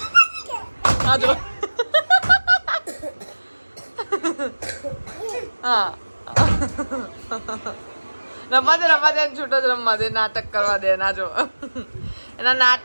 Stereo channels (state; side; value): inverted; both; correlation -1.00